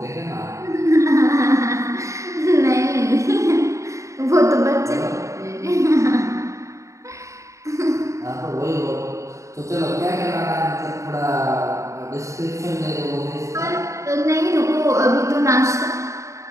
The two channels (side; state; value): left; late; 0.15 ms